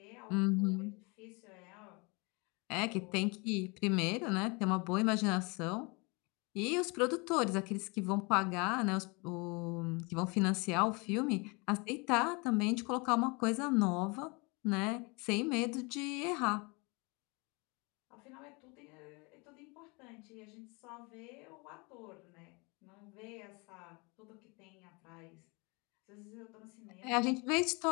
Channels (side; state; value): right; quieter; 28.9 dB